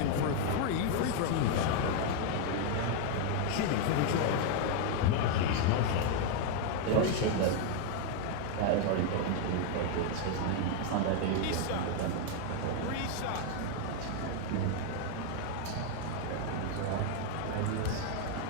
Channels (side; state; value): both; different; correlation 0.00